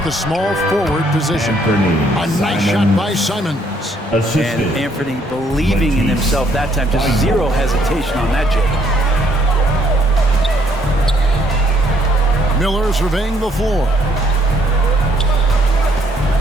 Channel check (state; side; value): normal; both; correlation 0.67